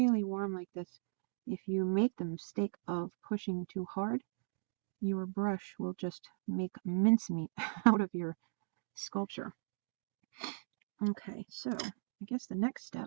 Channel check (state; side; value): silent; left; digital silence